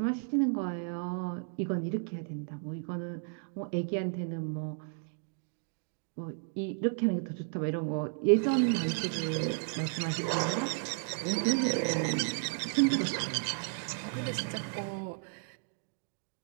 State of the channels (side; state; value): left; silent; 56 dB below the other